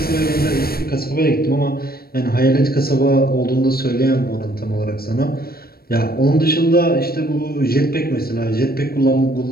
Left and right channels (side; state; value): right; late; 0.44 ms